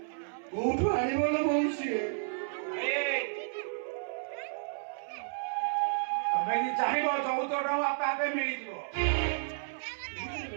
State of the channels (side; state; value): left; silent; 56 dB below the other